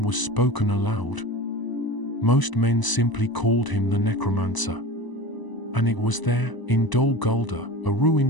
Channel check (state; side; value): late; right; 1.0 ms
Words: was spoken aloud. Most men simply called him the Necromancer. And it was there, in Dol Guldur, a